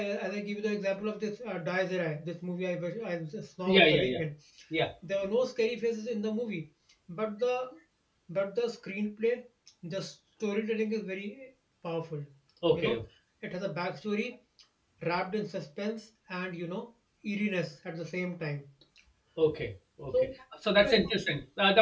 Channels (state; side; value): identical; both; correlation 1.00